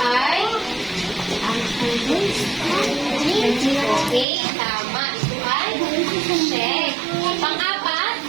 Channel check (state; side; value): drops out; left; at 4.2 s